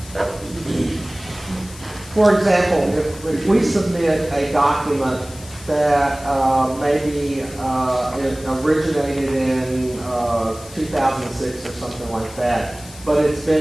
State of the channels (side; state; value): left; noise; hiss, 18 dB below the sound